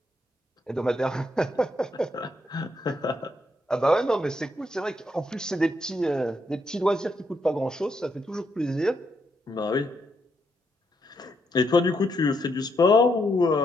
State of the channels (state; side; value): normal; both; correlation 0.78